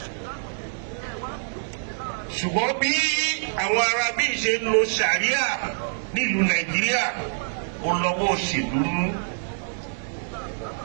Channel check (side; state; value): left; silent; digital silence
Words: Ṣùgbọ́n bí àwọn Arábí ṣe ń lo Sharia nílùú Nàìjíríà ó lọ́wọ́ òṣèlú nú.